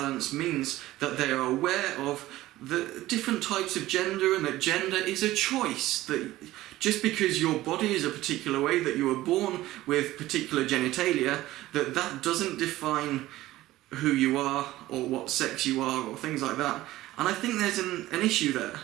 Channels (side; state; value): left; quieter; 16.3 dB